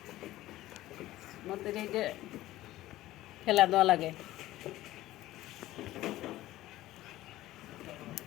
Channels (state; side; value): quieter; right; 15.8 dB